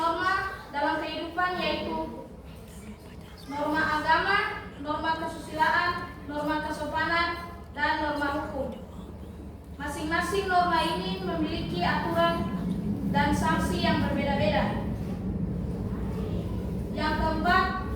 dalam kehidupan yaitu norma agama, norma kesusilaan, norma kesopanan, dan norma hukum. Masing-masing norma ini memiliki aturan dan sanksi yang berbeda-beda. Yang keempat,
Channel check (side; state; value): both; identical; correlation 1.00